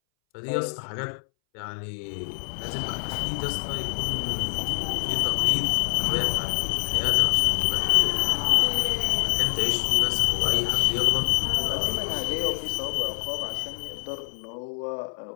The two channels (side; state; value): right; silent; 61 dB below the other